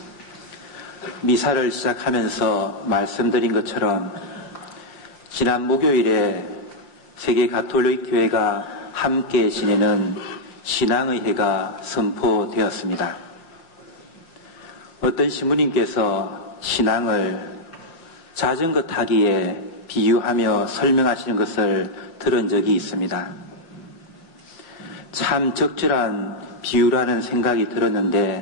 미사를 시작하면서 말씀드린 것처럼 지난 목요일에 세계 가톨릭 교회가 함께 지내는 신앙의 해가 선포되었습니다. 어떤 신부님께서 신앙을 자전거 타기에 비유하며 설명하시는 것을 들은 적이 있습니다. 참 적절한 비유라는 생각이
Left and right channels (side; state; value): right; late; 5.8 ms